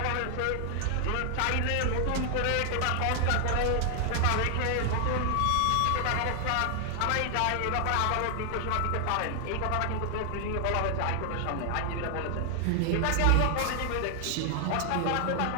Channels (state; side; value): different; both; correlation 0.00